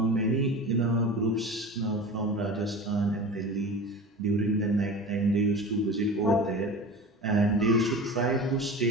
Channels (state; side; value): normal; both; correlation 0.33